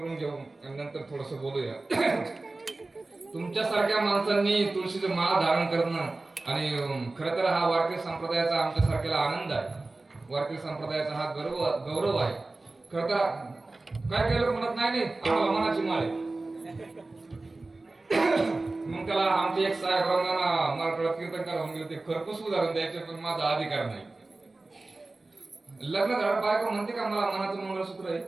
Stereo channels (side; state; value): left; quieter; 3.2 dB